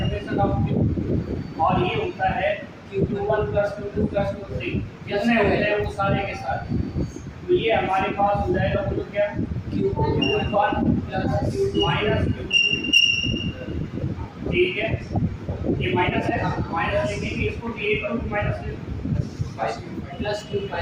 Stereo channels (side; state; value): both; identical; correlation 1.00